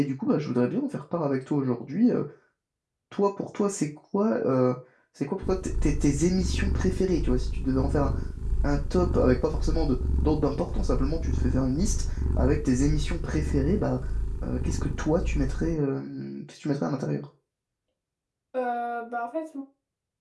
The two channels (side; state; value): both; identical; correlation 1.00